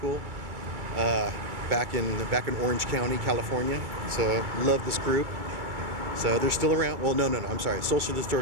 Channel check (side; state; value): left; late; 2.3 ms